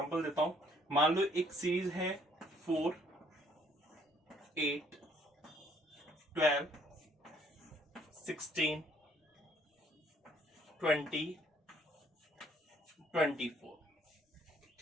देता हूं। मान लो एक सीरीज है 4, 8, 12, 16, 20, 24।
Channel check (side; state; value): both; normal; correlation 0.64